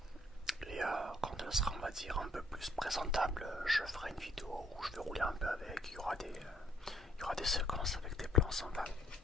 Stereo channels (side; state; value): both; normal; correlation 0.66